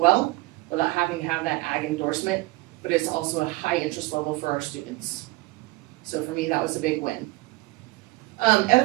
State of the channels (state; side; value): quieter; left; 21.6 dB